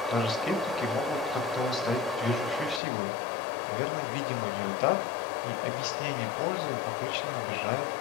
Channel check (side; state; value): right; drops out; at 2.8 s